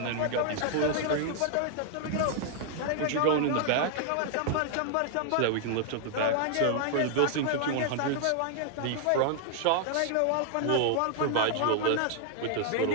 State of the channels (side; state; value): both; different; correlation -0.01